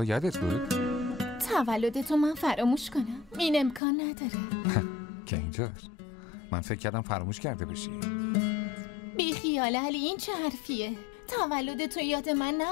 یادت بود؟ تولدتو من فراموش کنم؟ این امکان نداره. که اینطور. من فکر کردم فراموش کرده باشی. بی خیال علی، این چه حرفیه؟ تولدتو یاد من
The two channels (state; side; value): drops out; right; at 3.8 s